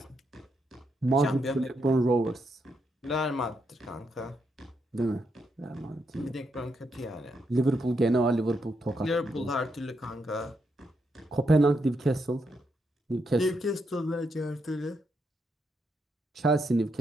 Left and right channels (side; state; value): both; normal; correlation 0.80